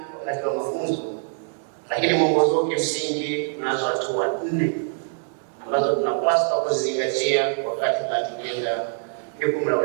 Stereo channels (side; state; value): left; silent; digital silence